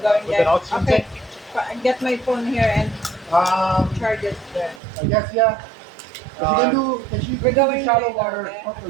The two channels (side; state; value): left; drops out; at 4.8 s